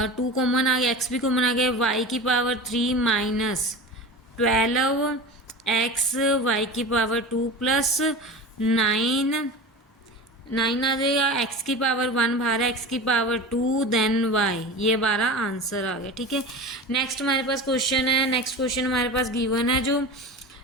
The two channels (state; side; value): normal; both; correlation 0.31